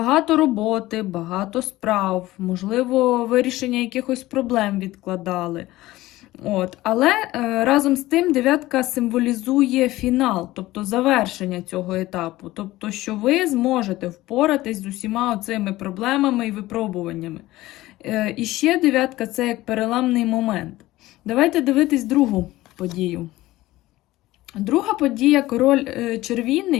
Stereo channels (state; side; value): quieter; right; 17.3 dB